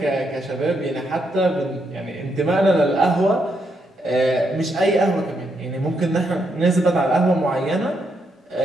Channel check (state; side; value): normal; both; correlation 0.79